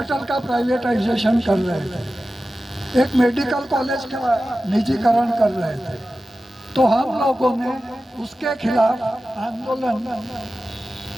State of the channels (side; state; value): both; normal; correlation 0.94